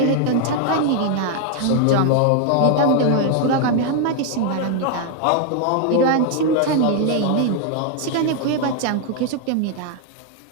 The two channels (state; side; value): different; both; correlation 0.00